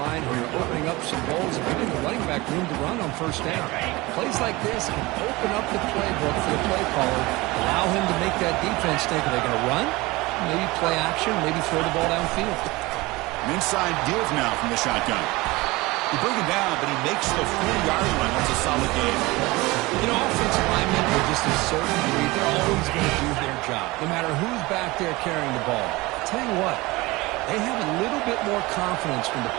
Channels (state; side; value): quieter; left; 21.8 dB